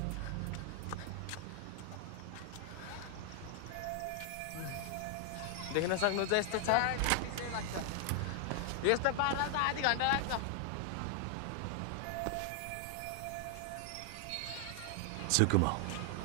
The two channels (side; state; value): both; different; correlation 0.00